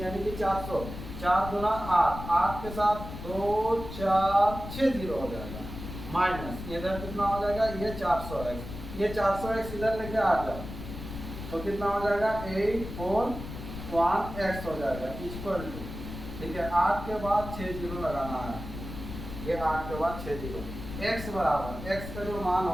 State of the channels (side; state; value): left; noise; rumble, 10 dB below the sound